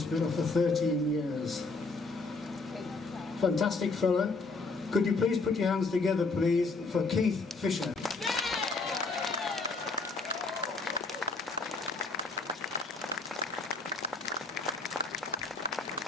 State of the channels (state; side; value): quieter; right; 3.7 dB